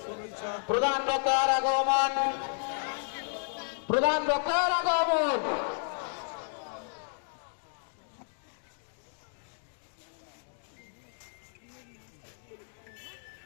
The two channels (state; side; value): silent; right; digital silence